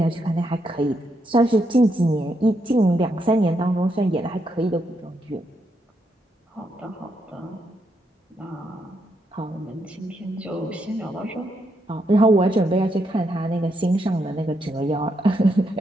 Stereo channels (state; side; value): normal; both; correlation 0.79